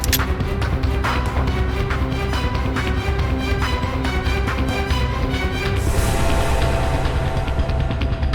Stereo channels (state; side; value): identical; both; correlation 1.00